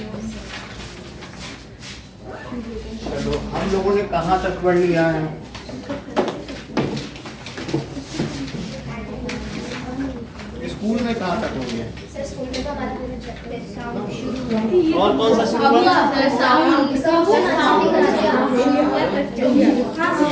चलो हम लोगों ने कहाँ तक पढ़ लिया है? स्कूल में कहाँ तक हो गया? और कौन सा शुरू हुआ?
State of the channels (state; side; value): identical; both; correlation 1.00